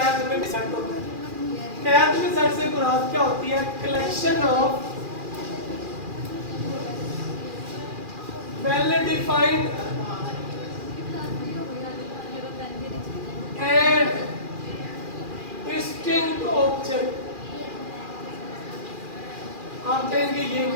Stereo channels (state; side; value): late; left; 2.4 ms